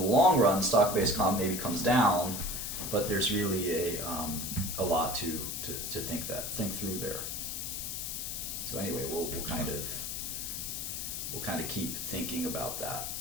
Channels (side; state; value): left; noise; hiss, 4 dB below the sound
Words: long run stock-based comp maybe comes down, but there's really a lot to think through there. So anyway, we'll kind of keep thinking about that.